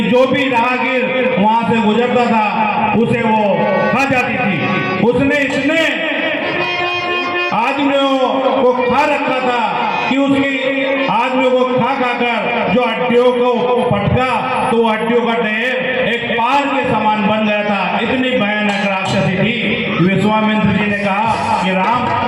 जो भी राहगीर वहां से गुजरता था उसे वो खा जाती थी। उसने इतने आदमियों को खा रखा था कि उसकी आदमियों को खा कर जो हड्डियों को पटका तो वो हड्डियों का ढेर एक पार के समान बन गया था। इतनी भयानक राक्षसी थी। विश्वामित्र जी ने कहा कि राम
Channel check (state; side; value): identical; both; correlation 1.00